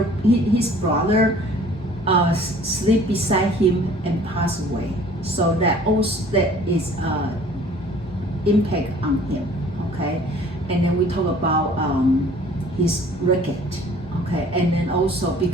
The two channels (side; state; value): both; normal; correlation 0.52